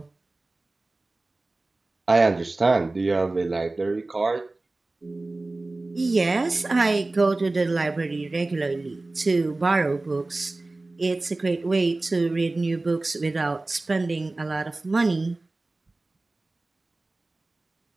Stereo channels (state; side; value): quieter; left; 3.1 dB